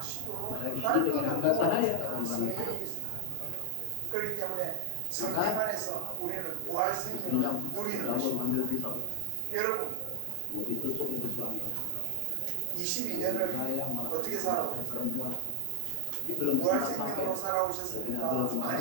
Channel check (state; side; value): different; both; correlation 0.00